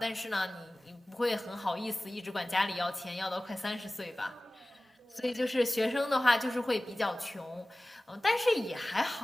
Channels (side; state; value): both; normal; correlation 0.98